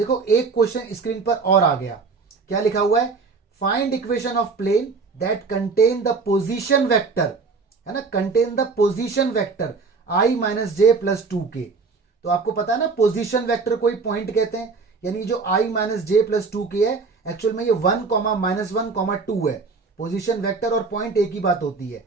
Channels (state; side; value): quieter; left; 4.5 dB